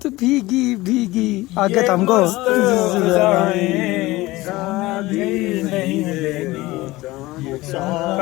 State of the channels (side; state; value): right; quieter; 19.4 dB